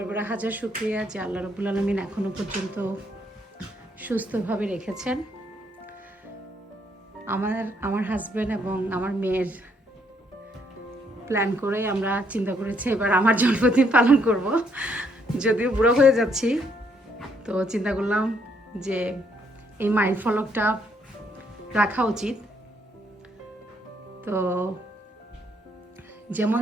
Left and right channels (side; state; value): both; normal; correlation 0.71